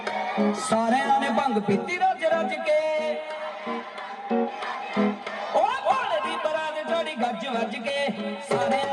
सारियां ने भंग पीती रज रज के ओ भोले दी बरात चढ़ी गज वज के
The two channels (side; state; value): both; identical; correlation 1.00